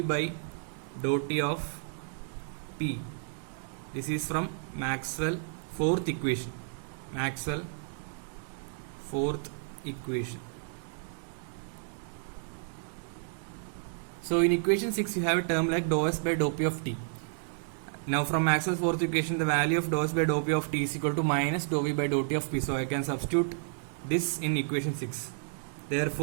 by dou T of P. This is from Maxwell fourth equation. So in equation 6 you have a term like dou S by dou P of T. Now from Maxwell's fourth equation, the value of dou S by dou P of T is equal to minus dou V by dou T of P. So I can substitute this in equation 6.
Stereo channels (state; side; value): silent; left; digital silence